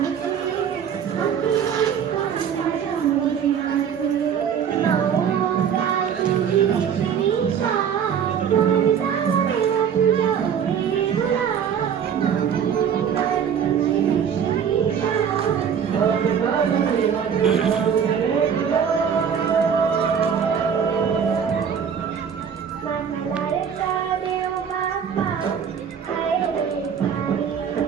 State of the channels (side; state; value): left; quieter; 7.7 dB